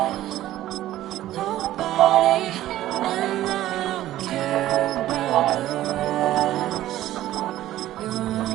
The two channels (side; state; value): left; quieter; 14.1 dB